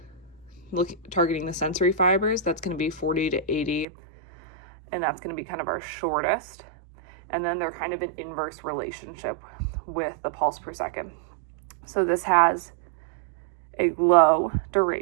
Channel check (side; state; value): left; drops out; at 3.9 s